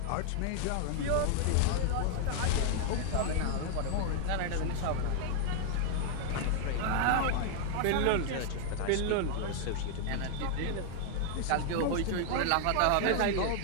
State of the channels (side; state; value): both; different; correlation 0.00